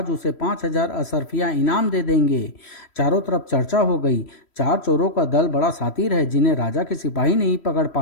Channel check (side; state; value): right; late; 3.1 ms